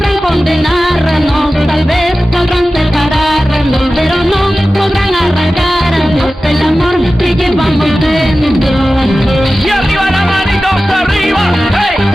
condenarnos, tal vez podrán separarnos, pero no podrán arrancarnos el amor que llevamos dentro. ¡Y arriba las manitos arriba! ¡Hey,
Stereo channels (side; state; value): both; normal; correlation 0.95